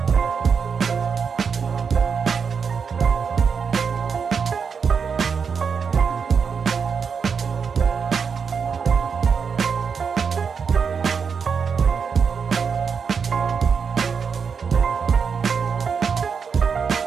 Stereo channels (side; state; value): left; quieter; 6.1 dB